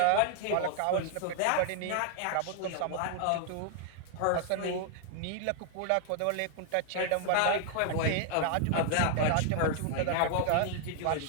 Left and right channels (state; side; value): different; both; correlation 0.00